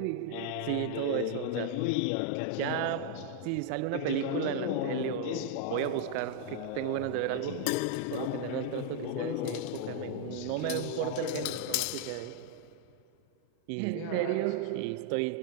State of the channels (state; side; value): different; both; correlation 0.00